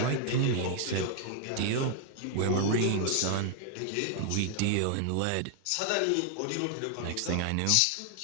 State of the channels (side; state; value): both; different; correlation 0.00